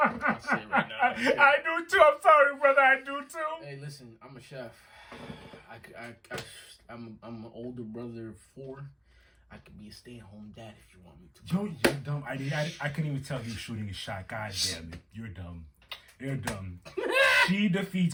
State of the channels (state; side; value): identical; both; correlation 1.00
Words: say it right now. I do too. I'm sorry, brother. I do too. Hey, listen. I'm a chef. I'm an older brother of 4. I could be a stay-at-home dad if you want me to. You're dumb. I couldn't even tell you shooting a shot. God damn it. You're dumb. You're dumb. She